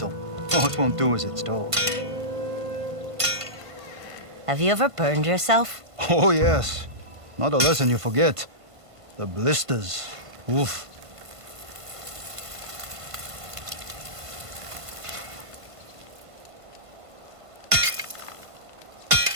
All it won't do as it's told. Have you ever burned yourself? Oh, yes. Not a lesson you forget. The blisters. Oof.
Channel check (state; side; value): late; left; 1.5 ms